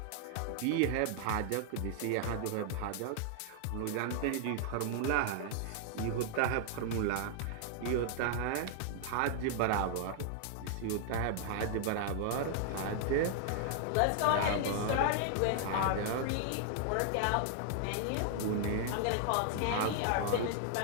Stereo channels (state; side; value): different; both; correlation 0.00